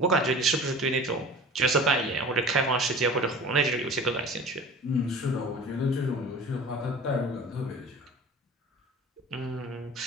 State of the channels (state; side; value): normal; both; correlation 0.40